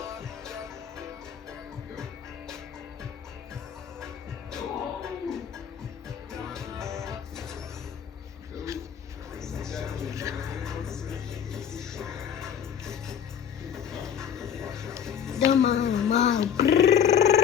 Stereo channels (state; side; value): quieter; right; 8.4 dB